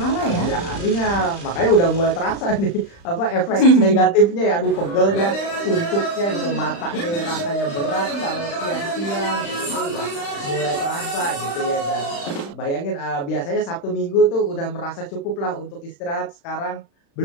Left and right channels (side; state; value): right; late; 35 ms